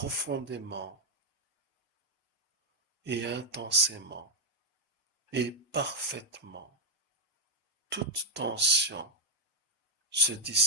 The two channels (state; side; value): normal; both; correlation -0.01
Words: et intensément et parfaitement. Toute tension se